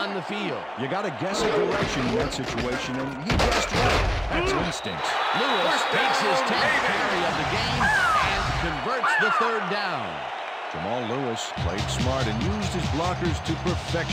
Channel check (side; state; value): both; identical; correlation 1.00